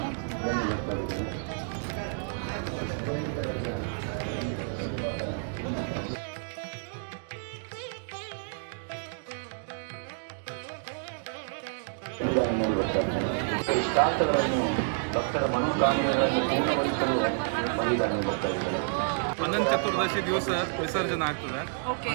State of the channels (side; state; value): left; silent; digital silence